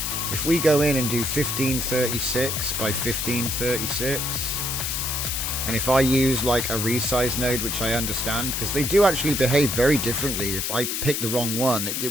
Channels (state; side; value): noise; left; hiss, 1 dB below the sound